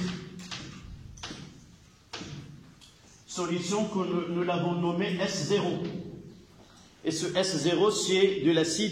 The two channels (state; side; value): identical; both; correlation 1.00